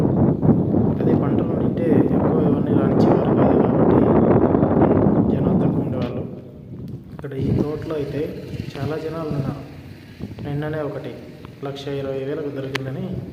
అదే పంటలు ఉంటే ఎక్కువ ఎవరిని రానిచ్చేవారు కాదు కాబట్టి జనాలు తక్కువ ఉండేవాళ్ళు. ఇక్కడ ఈ తోటలో అయితే చాలా జనాలు ఉన్నారు. నిన్ననే ఒకటి 1,20,000 దొరికిందని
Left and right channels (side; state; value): both; identical; correlation 1.00